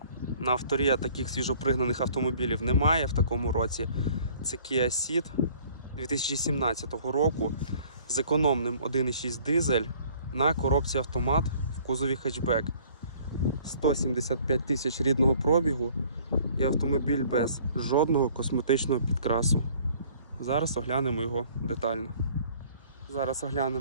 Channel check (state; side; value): inverted; both; correlation -0.55